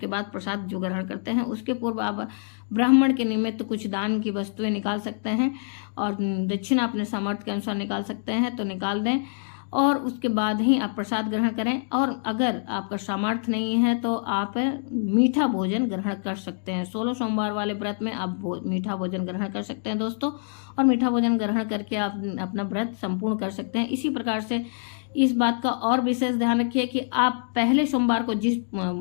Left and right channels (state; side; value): silent; right; digital silence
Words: बाद प्रसाद जो ग्रहण करते हैं उसके पूर्व आप ब्राह्मण के निमित्त कुछ दान की वस्तुएं निकाल सकते हैं और दक्षिणा अपने सामर्थ्य के अनुसार निकाल सकते हैं तो निकाल दें और उसके बाद ही आप प्रसाद ग्रहण करें। और अगर आपका सामर्थ्य नहीं है तो आप मीठा भोजन ग्रहण कर सकते हैं। 16 सोमवार वाले व्रत में आप मीठा भोजन ग्रहण कर सकते हैं दोस्तों और मीठा भोजन ग्रहण करके आप अपना व्रत संपूर्ण कर सकते हैं। इसी प्रकार से इस बात का और विशेष ध्यान रखिए कि आप पहले सोमवार को जिस